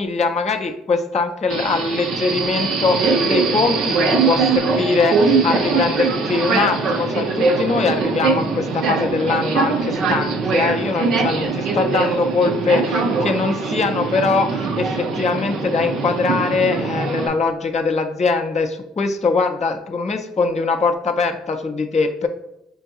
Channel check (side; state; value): both; normal; correlation 0.57